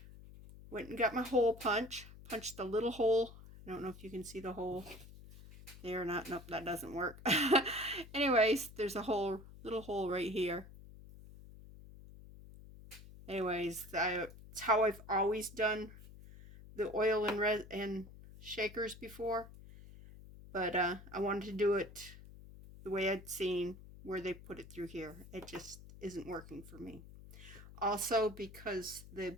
Went and got my hole punch. Punched the little hole. I don't know if you can see the hole there or not. Nope, that doesn't work. Anyways, there's a little hole right here. Anyways, it's how I've always done the oil and shakers before. But I wanted to do it the way I'd seen where they put it through here. It just isn't working for me. Also, because the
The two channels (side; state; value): left; noise; hum, 17 dB below the sound